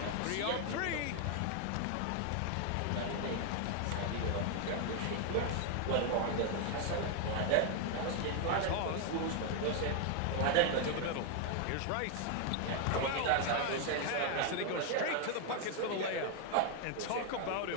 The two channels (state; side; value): different; both; correlation 0.00